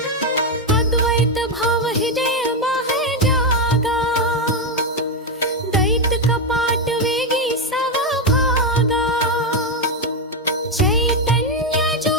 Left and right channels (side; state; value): both; normal; correlation 0.06